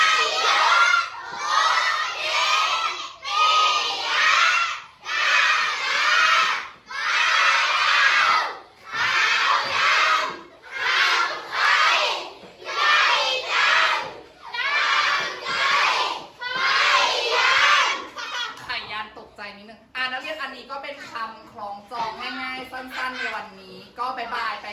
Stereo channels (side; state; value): both; identical; correlation 1.00